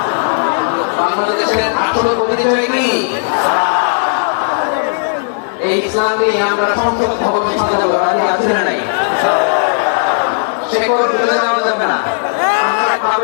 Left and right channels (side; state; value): right; silent; digital silence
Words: বাংলাদেশের আসল পরিচয় কি? এই ইসলাম নিয়ে আমরা সংসদ ভবন সাজাবো, রাজি আছি না নাই? শেকড় তুলে দেওয়া যাবে না। আমরা